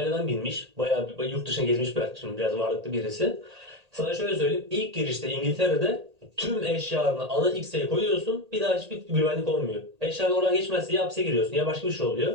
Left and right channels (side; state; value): left; late; 1.8 ms